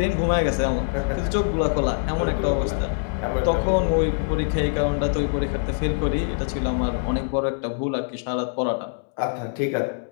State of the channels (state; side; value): silent; right; digital silence